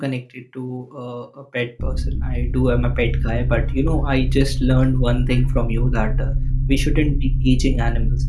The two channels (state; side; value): identical; both; correlation 1.00